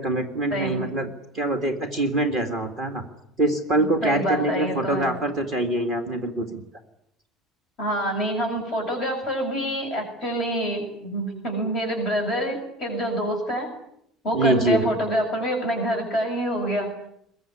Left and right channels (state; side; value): normal; both; correlation 0.31